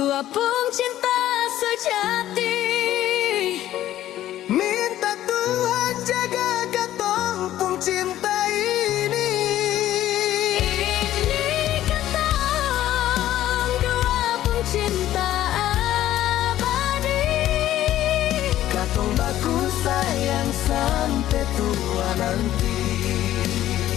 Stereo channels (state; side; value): quieter; right; 13.2 dB